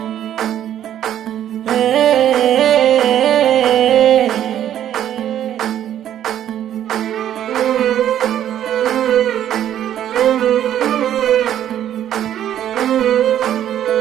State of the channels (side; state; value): left; quieter; 11.0 dB